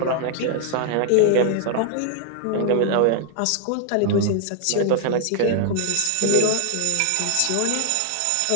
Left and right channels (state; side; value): different; both; correlation 0.00